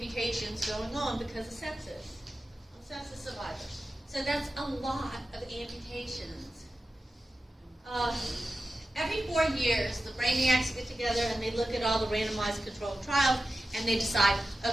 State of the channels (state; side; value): normal; both; correlation 0.93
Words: going on because of sepsis. Sepsis survivors. So that's a lot of amputations. Every 4 years, the brainiacs get together and they look at all the randomized controlled trials and they decide,